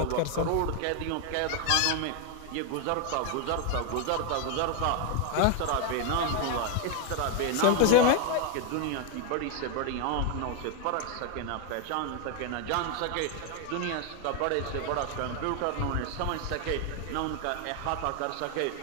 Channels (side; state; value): both; different; correlation 0.01